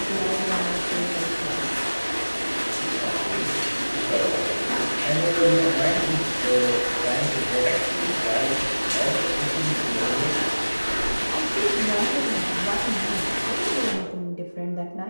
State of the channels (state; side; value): inverted; both; correlation -1.00